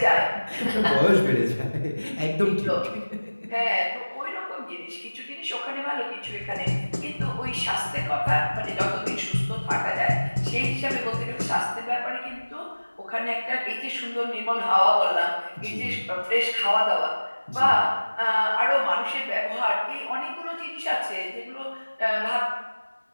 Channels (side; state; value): both; inverted; correlation -1.00